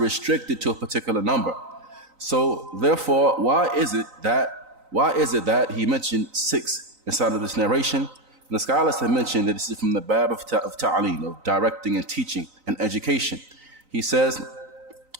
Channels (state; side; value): late; left; 3.9 ms